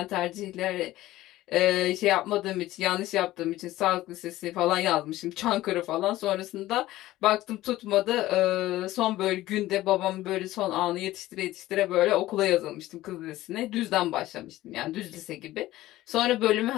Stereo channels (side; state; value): right; quieter; 16.1 dB